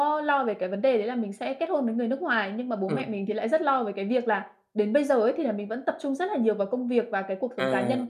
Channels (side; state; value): both; identical; correlation 1.00